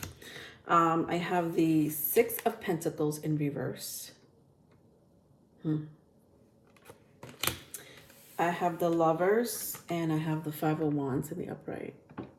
I have the Six of Pentacles in reverse. I have the Lovers, and I have the Five of Wands in the upright.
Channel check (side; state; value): both; identical; correlation 1.00